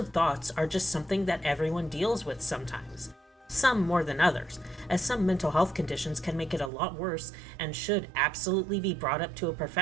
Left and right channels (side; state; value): left; drops out; at 6.7 s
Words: thoughts are just something that everyone deals with sometimes. Some more than others, as some mental health conditions can make it a lot worse and should absolutely be brought up to a